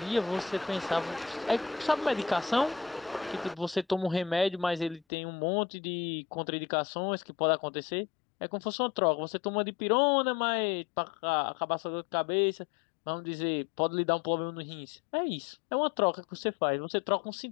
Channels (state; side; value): drops out; right; at 5.0 s